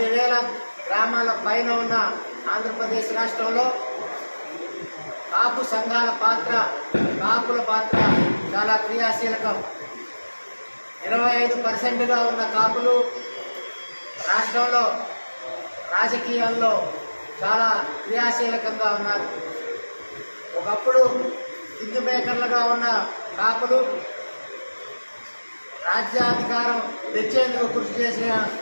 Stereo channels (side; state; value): both; inverted; correlation -1.00